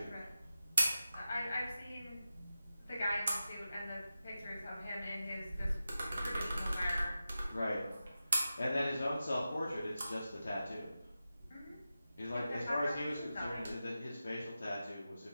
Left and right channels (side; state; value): both; inverted; correlation -0.92